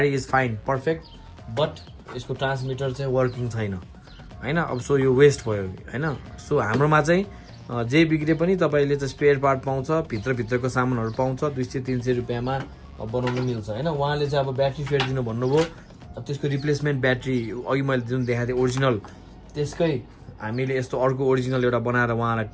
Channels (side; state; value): both; identical; correlation 1.00